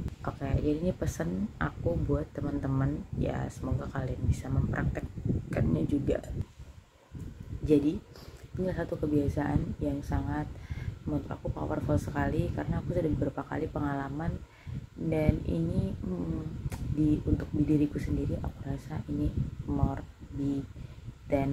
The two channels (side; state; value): both; identical; correlation 1.00